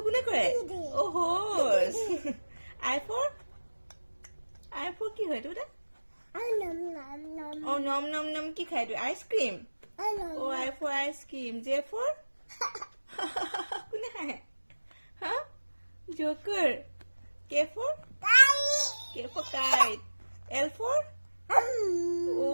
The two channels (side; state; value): both; inverted; correlation -1.00